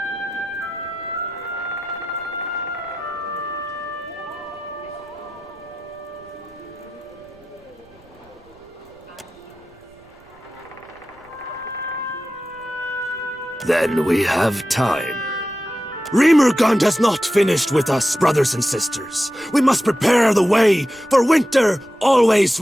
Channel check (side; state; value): right; noise; rumble, 28 dB below the sound